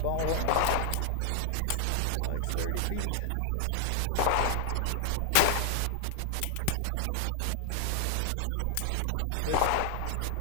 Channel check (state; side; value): different; both; correlation 0.00